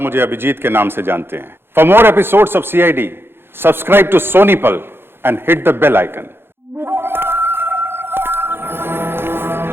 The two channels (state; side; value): late; left; 0.11 ms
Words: मुझे अभिजीत के नाम से जानते हैं। For more episodes of CID, subscribe to SonyLIV and hit the bell icon.